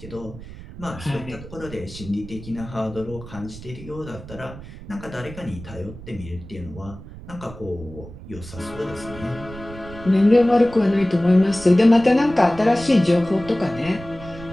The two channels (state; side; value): noise; right; rumble, 15 dB below the sound